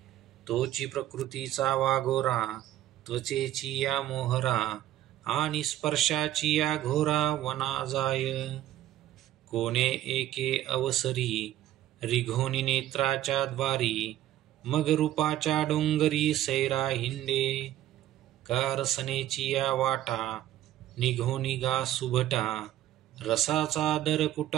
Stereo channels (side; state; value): left; quieter; 13.3 dB